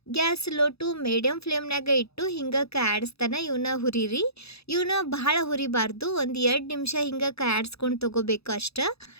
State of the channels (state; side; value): late; right; 0.78 ms